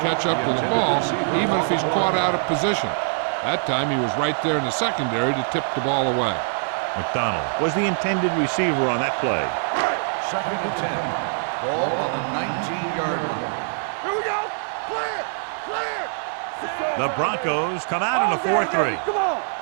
catch up to the ball even if he's caught out of position. That time he was right there in the secondary to tip the ball away. McDonald was the intended receiver on that play. 2nd and 10. Ball on the 19-yard line. Here we go. Clear. The Broncos come out in a 4-3. Come on.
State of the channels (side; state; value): left; silent; digital silence